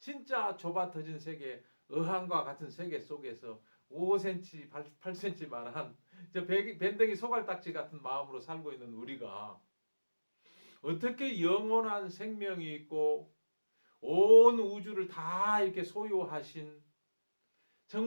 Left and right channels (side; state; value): both; inverted; correlation -1.00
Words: 좁아터진 세계, 어항과 같은 세계 속에서 5cm, 8cm만한 밴댕이 소갈딱지 같은 마음으로 살고 있는 우리가 어떻게 영원한 생명이 있고 온 우주를 다 이렇게 소유하신